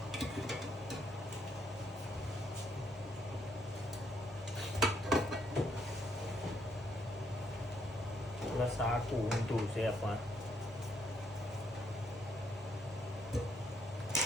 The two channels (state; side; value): normal; both; correlation 0.72